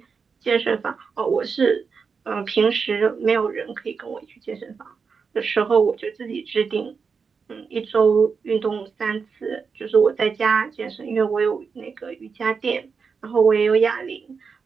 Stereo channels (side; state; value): left; quieter; 5.5 dB